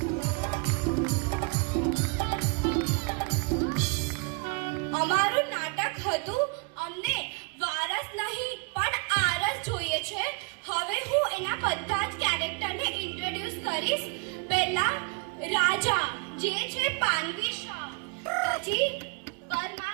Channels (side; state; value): left; quieter; 33.2 dB